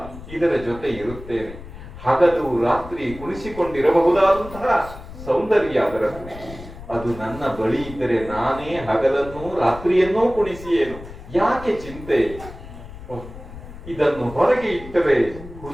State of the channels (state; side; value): noise; left; rumble, 14 dB below the sound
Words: ಇದರ ಜೊತೆ ಇರುತ್ತೇನೆ. ಹಗಲು ರಾತ್ರಿ ಕುಣಿಸಿಕೊಂಡಿರಬಹುದಾದಂತಹ ಸೌಂದರ್ಯ ಅದರದ್ದು. ಅದು ನನ್ನ ಬಳಿ ಇದ್ದರೆ ನಾನೇ ಹಗಲನ್ನೂ ರಾತ್ರಿಯನ್ನೂ ಕುಣಿಸಿಯೇನು. ಯಾಕೆ ಚಿಂತೆ? ಇದನ್ನು ಹೊರಗೆ ಇಟ್ಟರೆ